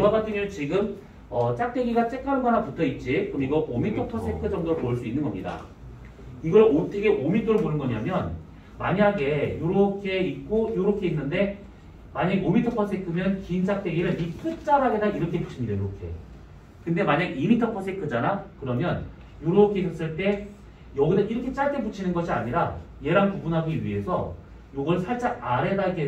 같은 경우는 지금 짝대기가 쬐까는 거 하나 붙어 있지. 그럼 이거 5m/s 정도로 볼 수 있는 겁니다. 이걸 어떻게 5m를 보는 거냐면, 만약에 요렇게 있고 요렇게 있는데 만약에 5m/s면 긴 짝대기를 이 끝자락에다 이렇게 붙입니다. 이렇게. 근데 만약 2m/s잖아? 그러면 이렇게 했을 때 여기다 이렇게 짧게 붙이는 것이 아니라 얘랑 구분하기 위해서 요걸 살짝 아래다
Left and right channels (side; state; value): both; identical; correlation 1.00